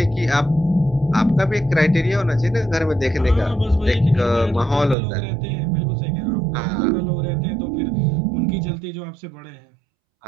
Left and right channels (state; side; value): drops out; left; at 5.0 s